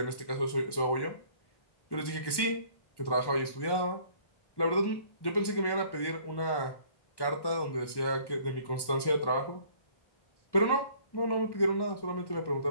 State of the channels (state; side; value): late; right; 1.1 ms